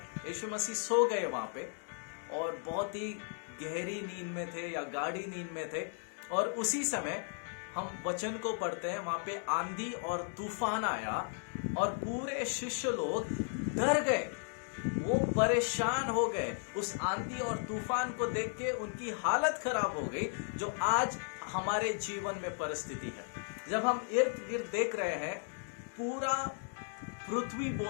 यीशु मसीह सो गए वहाँ पे, और बहुत ही गहरी नींद में थे या गाढ़ी नींद में थे। और उसी समय हम वचन को पढ़ते हैं, वहाँ पे आंधी और तूफान आया और पूरे शिष्य लोग डर गए, वो परेशान हो गए। उस आंधी और तूफान को देख के उनकी हालत खराब हो गई, जो आज हमारे जीवन में परिस्थिति है। जब हम इर्द गिर्द देख रहे हैं, पूरा पृथ्वी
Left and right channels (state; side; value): silent; right; 54 dB below the other